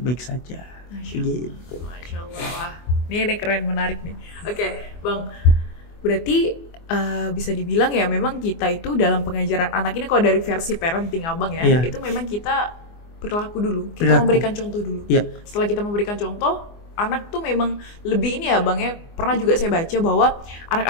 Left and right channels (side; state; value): right; late; 24 ms